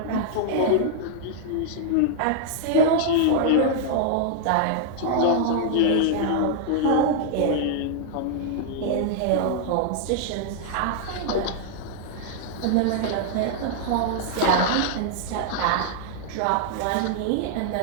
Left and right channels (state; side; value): different; both; correlation -0.01